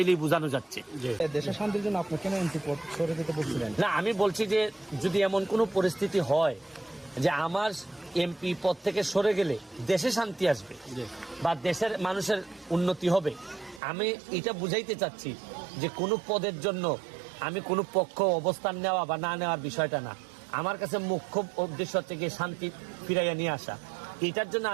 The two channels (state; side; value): drops out; left; at 13.8 s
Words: বোঝানো যাচ্ছে। দেশের শান্তির জন্য আপনি কেন এমপি পদ সরে দিতে বলছিলেন? না, আমি বলছি যে যদি এমন কোনো পরিস্থিতি হয় যে আমার এমপি পদ থেকে সরে গেলে দেশে শান্তি আসবে বা দেশের মানুষের উন্নতি হবে, আমি এটা বুঝাইতে চাচ্ছি যে কোনো পদের জন্য আমি কোনো পক্ষ অবস্থান নেওয়া বা না নেওয়ার বিষয়টা না। আমার কাছে মুখ্য উদ্দেশ্য হচ্ছে গিয়ে শান্তি ফিরাইয়া নিয়ে আসা। এটার জন্য